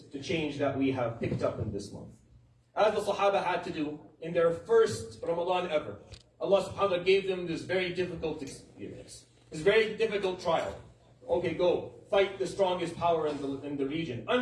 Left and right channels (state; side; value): identical; both; correlation 1.00